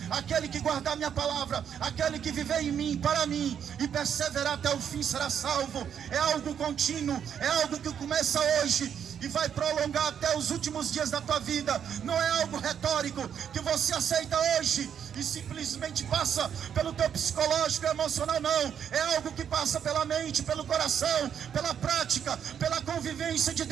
aquele que guardar minha palavra, aquele que viver em mim, para mim, e perseverar até o fim será salvo. É algo contínuo, é algo que começa hoje e vai prolongar até os últimos dias da tua vida. Não é algo retórico que você aceita hoje e simplesmente passa pelo teu psicológico e emocional, não. É algo que passa pela mente, pelo coração, pela prática, pela convivência de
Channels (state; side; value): quieter; left; 8.4 dB